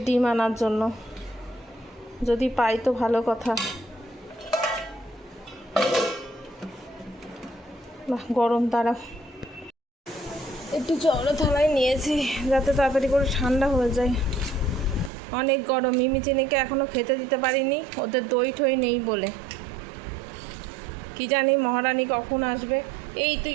ডিম আনার জন্য, যদি পাই তো ভালো কথা। গরম, তারা একটু জল থালায় নিয়েছি যাতে তাড়াতাড়ি করে ঠান্ডা হয়ে যায়, অনেক গরম। মিমি চিনিকে এখনও খেতে দিতে পারিনি, ওদের দই ঠই নেই বলে। কি জানি মহারানী কখন আসবে। এই তুই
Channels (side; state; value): left; drops out; at 15.1 s